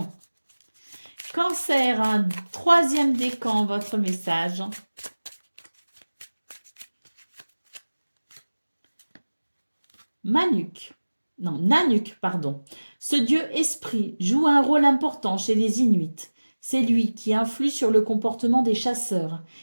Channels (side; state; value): both; inverted; correlation -1.00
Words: Cancer, un troisième décan, votre message. Nanuk, pardon. Ce dieu esprit joue un rôle important chez les Inuits. C'est lui qui influe sur le comportement des chasseurs.